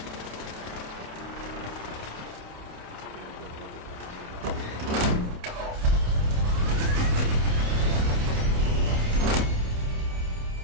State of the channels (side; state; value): left; late; 28 ms